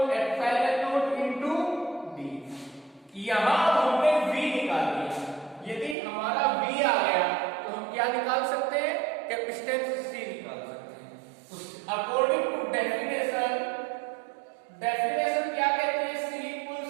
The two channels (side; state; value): left; drops out; at 6.0 s